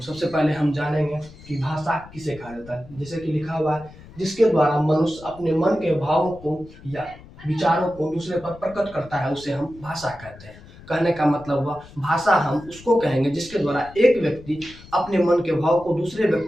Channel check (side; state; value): left; noise; rumble, 20 dB below the sound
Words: सबसे पहले हम जानेंगे कि भाषा किसे कहा जाता है। जैसे कि लिखा हुआ है, जिसके द्वारा मनुष्य अपने मन के भावों को या विचारों को दूसरे पर प्रकट करता है, उसे हम भाषा कहते हैं। कहने का मतलब हुआ, भाषा हम उसको कहेंगे जिसके द्वारा एक व्यक्ति अपने मन के भाव को दूसरे